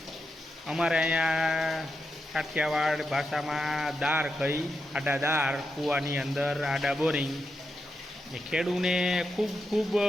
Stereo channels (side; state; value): both; normal; correlation 0.86